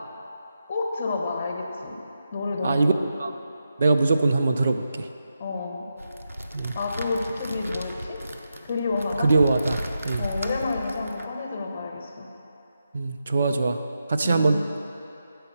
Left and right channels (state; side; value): inverted; both; correlation -0.87